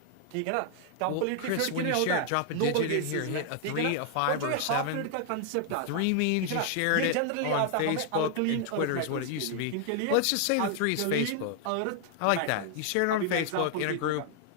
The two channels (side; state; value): both; different; correlation 0.00